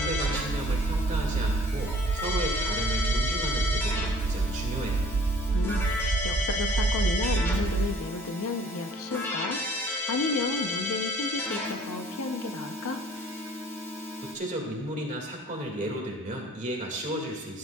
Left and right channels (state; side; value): normal; both; correlation 0.54